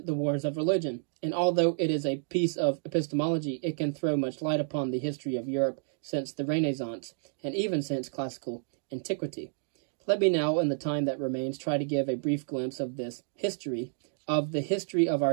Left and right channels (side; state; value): left; silent; digital silence